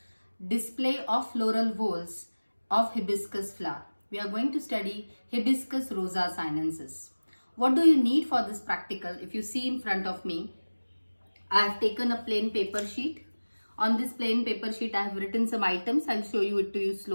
display of floral whorls of hibiscus flower. We are going to study Hibiscus rosa sinensis. What do you need for this practical? If you see in front of me, I have taken a plain paper sheet. On this plain paper sheet, I have written some items. I'll show you it to you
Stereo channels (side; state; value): both; inverted; correlation -1.00